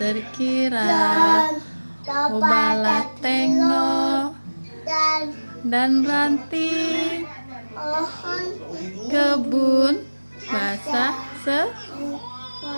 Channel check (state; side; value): inverted; both; correlation -1.00